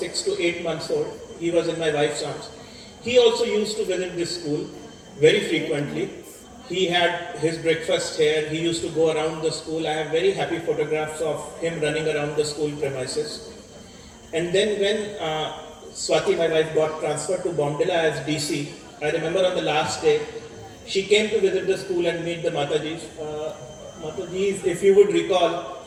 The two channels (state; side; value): identical; both; correlation 1.00